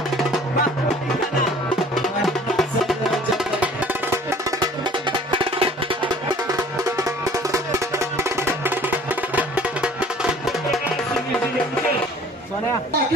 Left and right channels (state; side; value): normal; both; correlation 0.52